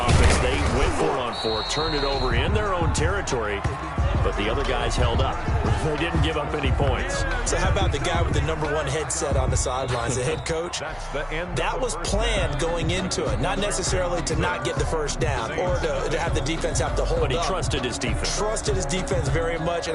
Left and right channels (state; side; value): identical; both; correlation 1.00